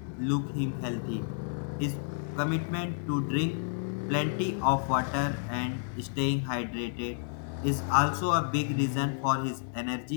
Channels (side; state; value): right; silent; digital silence